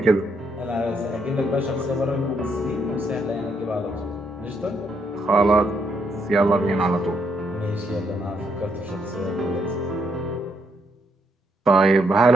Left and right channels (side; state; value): both; normal; correlation 0.75